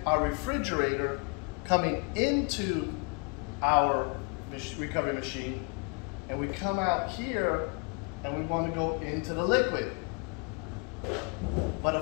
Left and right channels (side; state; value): right; quieter; 32.8 dB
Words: our refrigerator coming into our recovery machine, and we come out here and we want to go into the liquid. But